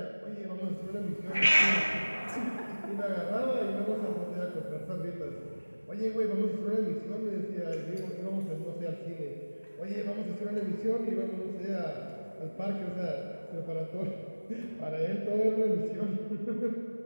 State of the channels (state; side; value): inverted; both; correlation -1.00